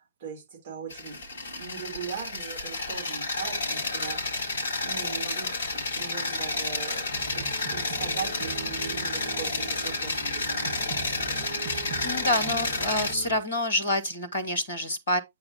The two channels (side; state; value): both; inverted; correlation -0.57